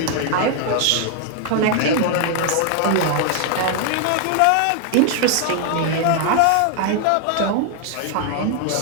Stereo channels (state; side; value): different; both; correlation 0.00